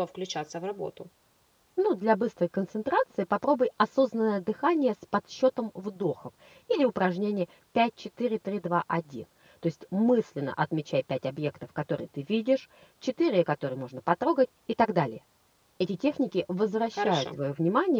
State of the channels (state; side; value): identical; both; correlation 1.00